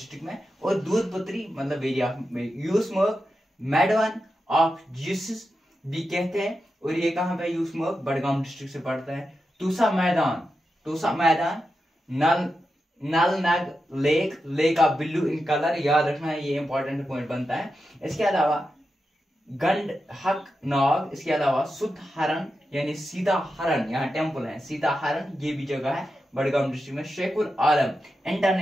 में। और दूध पत्री मतलब very of Yusmarg meadow of Jesus भी कहते हैं, और ये कहाँ पे यूसमर्ग बड़गाम डिस्ट्रिक्ट से पड़ता है। तूसा मैदान नल नग lake of Billu in colour, याद रखना है, ये इंपॉर्टेंट पॉइंट बनता है। इसके अलावा गंड हक नाग, इसके अलावा सुध हरण यानी सीता हरण, यहाँ टेम्पल है सीता हरण, ये भी जगह है बड़गाम डिस्ट्रिक्ट में। शेखुल आलम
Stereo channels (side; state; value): both; normal; correlation 0.89